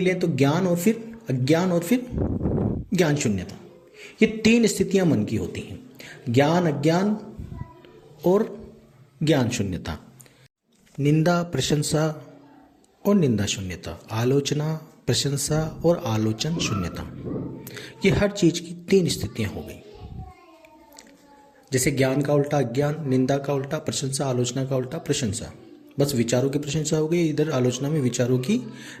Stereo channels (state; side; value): identical; both; correlation 1.00